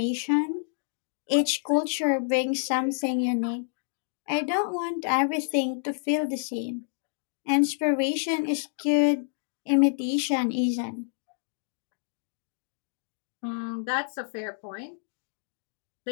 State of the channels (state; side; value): silent; right; digital silence